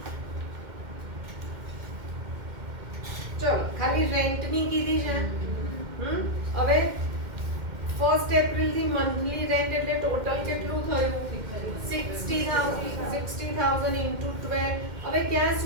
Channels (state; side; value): late; left; 2.1 ms